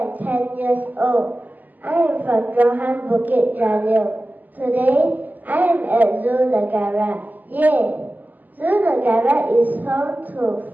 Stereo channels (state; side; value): late; left; 0.083 ms